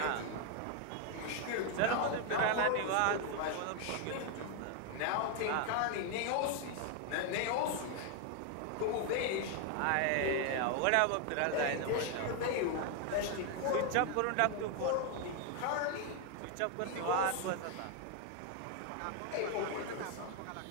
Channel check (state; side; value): different; both; correlation 0.01